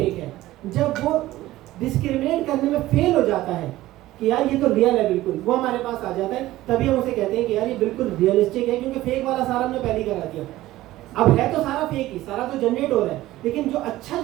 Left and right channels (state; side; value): quieter; left; 16.2 dB